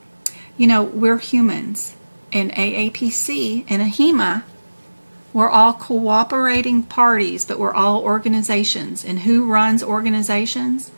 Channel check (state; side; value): inverted; both; correlation -1.00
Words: We're humans, and aapc and ahima, we're all cooperating parties, but we're all organizations. And who runs organizations?